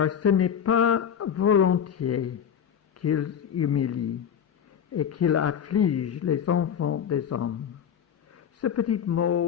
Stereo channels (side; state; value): right; quieter; 8.4 dB